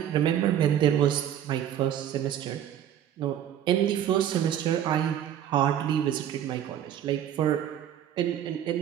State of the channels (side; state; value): left; quieter; 10.4 dB